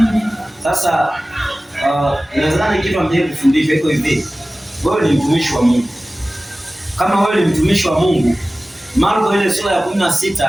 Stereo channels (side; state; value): both; normal; correlation 0.97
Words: Sasa inawezekana kitu ambacho kufundisha iko hivi, wewe ni mtumishi wa Mungu. Kama wewe ni mtumishi wa Mungu, Marko ile sura ya